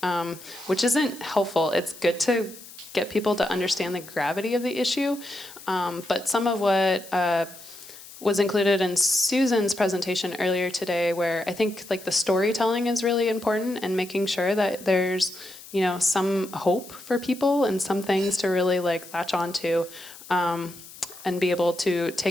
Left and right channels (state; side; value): noise; left; hiss, 17 dB below the sound